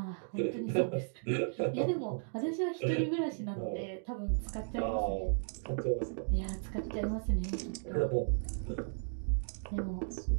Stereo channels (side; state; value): left; silent; digital silence